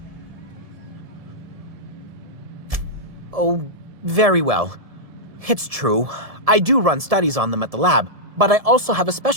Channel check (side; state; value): left; late; 1.7 ms